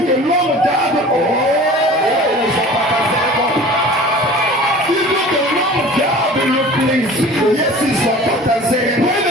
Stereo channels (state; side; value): normal; both; correlation 0.42